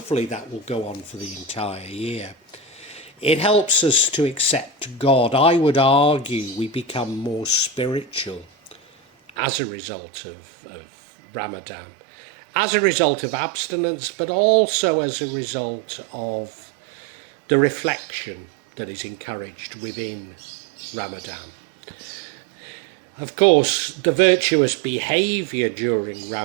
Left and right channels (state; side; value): drops out; left; at 9.3 s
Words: that will go on for the entire year. It helps us to accept God. I would argue we become more spiritual as a result of Ramadan, as a result of abstinence, but also as a result of the reflection that is encouraged within Ramadan. Of course, the virtuous behaviour during